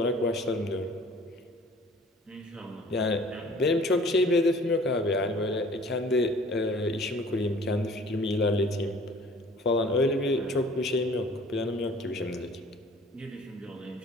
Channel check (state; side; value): normal; both; correlation 0.51